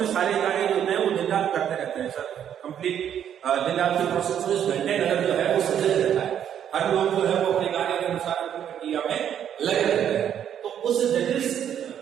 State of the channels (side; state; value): left; quieter; 9.5 dB